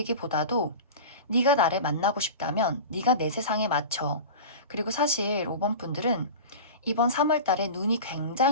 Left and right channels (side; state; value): both; inverted; correlation -0.31